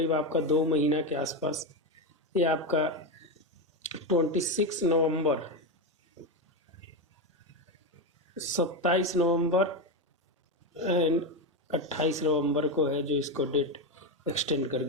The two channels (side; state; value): both; normal; correlation 0.12